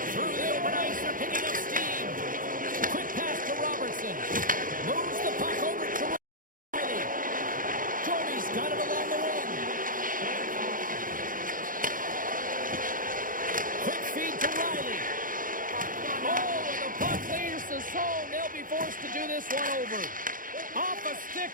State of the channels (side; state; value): left; late; 0.40 ms